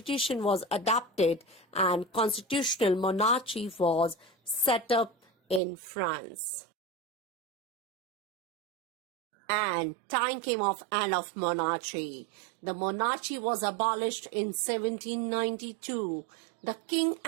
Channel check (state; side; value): drops out; left; at 5.6 s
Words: was adopted and constitutional monarchy was set up in France. and time came of end of monarchy. The monarchy was abolished in 1792. The king